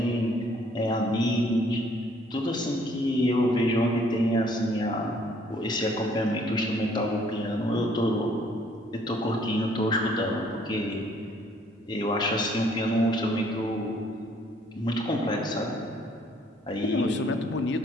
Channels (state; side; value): normal; both; correlation 0.62